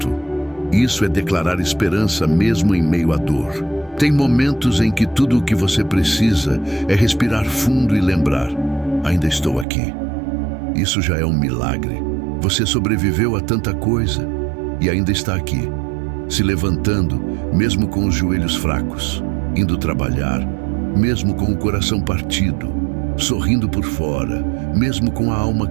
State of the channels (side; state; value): left; drops out; at 9.7 s